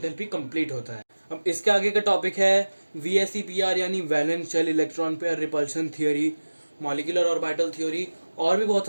कंप्लीट होता है। अब इसके आगे का टॉपिक है VSEPR यानी valence shell electron pair repulsion theory, molecular orbital theory, और भी बहुत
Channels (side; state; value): both; inverted; correlation -1.00